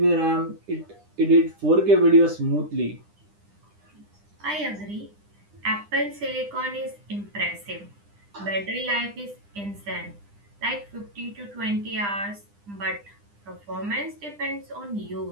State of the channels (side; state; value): left; late; 9.9 ms